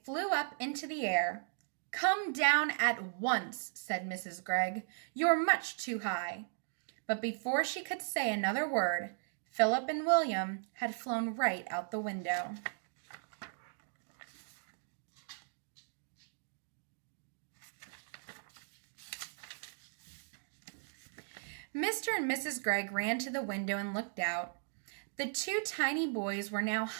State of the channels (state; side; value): silent; left; digital silence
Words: flew up into the air. Come down at once, said Mrs. Gregg. You're much too high. But before she could say another word, Philip and William had flown right out the window. Mr. and Mrs. Gregg ran to the window and looked out. The two tiny boys were now